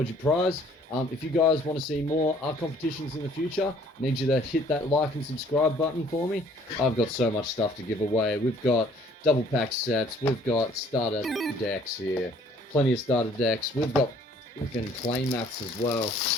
your prize. If you guys want to see more art competitions in the future, I need you to hit that like and subscribe button for me. I've got so much stuff to give away. We've got double pack sets. We've got starter decks here. Plenty of starter decks. We've got freaking play mats as well.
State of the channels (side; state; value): both; normal; correlation 0.58